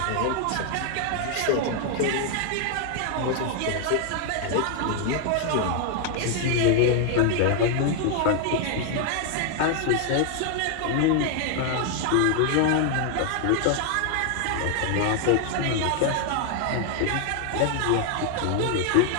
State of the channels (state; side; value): different; both; correlation 0.00